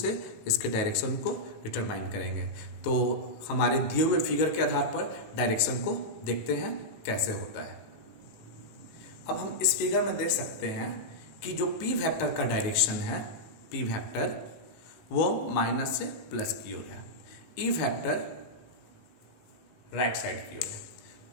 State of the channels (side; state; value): right; late; 18 ms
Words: इसके डायरेक्शन को डिटरमाइन करेंगे। तो हमारे दिए हुए फिगर के आधार पर डायरेक्शन को देखते हैं कैसे होता है। अब हम इस फिगर में देख सकते हैं कि जो P वेक्टर का डायरेक्शन है, P वेक्टर वो माइनस से प्लस की ओर है, E वेक्टर राइट साइड की ओर है।